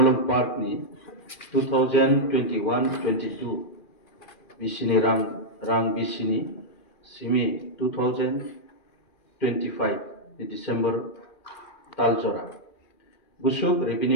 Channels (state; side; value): late; right; 2.4 ms